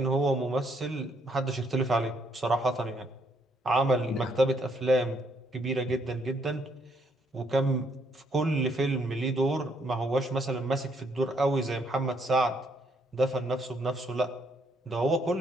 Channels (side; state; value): both; normal; correlation 0.71